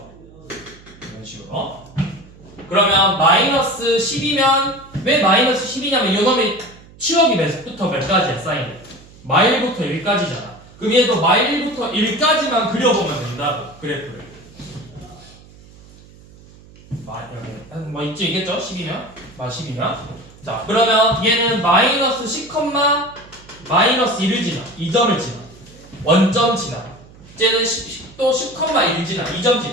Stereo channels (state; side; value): noise; right; hum, 23 dB below the sound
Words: 이런 식으로. 그러면 마이너스 10이면 왜 마이너스 10이냐면 요놈의 치역이 몇부터 몇 가지야 사인이? 마일부터 1까지잖아. 그럼 얘도 마일부터 1까지만 그려보면 된다고 그래프를. 뭐 있지 있겠죠? 10이면? 10이면. 자 그러면 얘는 마이너스 10, 마이너스 1을 지나 2점을 지나 원점 지나 쟤는 또 10,1 지나 2점